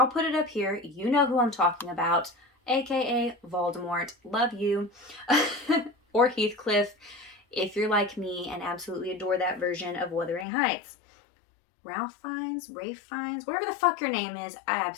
put it up here. You know who I'm talking about, aka Voldemort. Love you. Or Heathcliff, if you're like me and absolutely adore that version of Wuthering Heights. Ralph Fiennes, Rafe Fiennes, whatever the fuck your name is, I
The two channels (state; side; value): drops out; right; at 10.5 s